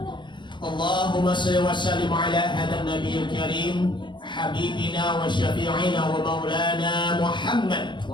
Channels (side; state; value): right; late; 0.23 ms